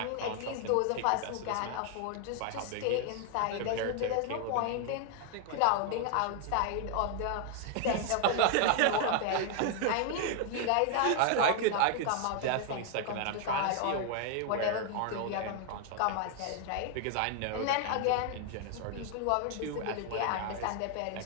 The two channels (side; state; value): both; different; correlation 0.00